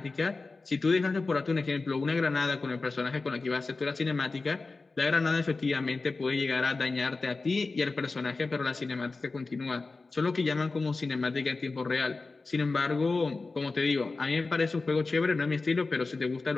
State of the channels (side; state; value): right; quieter; 3.7 dB